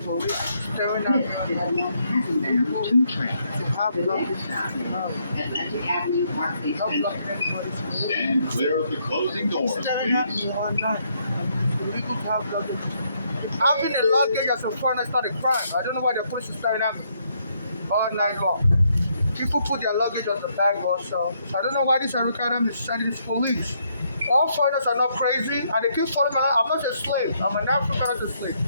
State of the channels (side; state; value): both; inverted; correlation -0.73